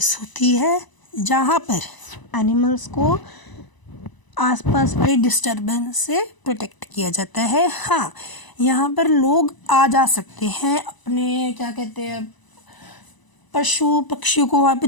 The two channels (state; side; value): late; right; 1.0 ms